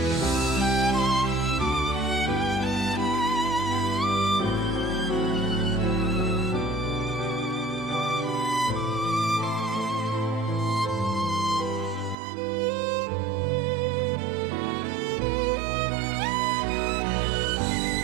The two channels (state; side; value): drops out; left; at 12.2 s